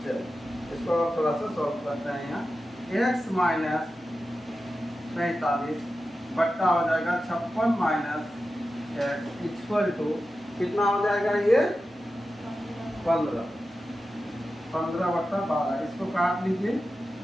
चलो इसको थोड़ा सा सॉल्व करते हैं। यहाँ x माइनस 45 बट्टा हो जाएगा 56 माइनस एक्स इक्वल टू कितना हो जाएगा, ये 15, 15/12। इसको काट लीजिए,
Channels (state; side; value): normal; both; correlation 0.92